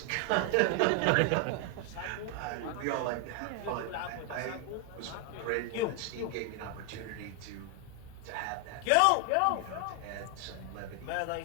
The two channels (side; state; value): both; different; correlation 0.00